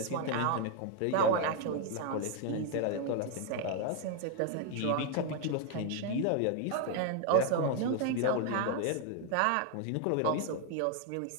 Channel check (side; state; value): both; different; correlation 0.00